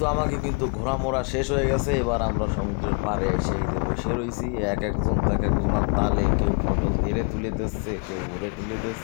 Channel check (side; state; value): right; quieter; 33.9 dB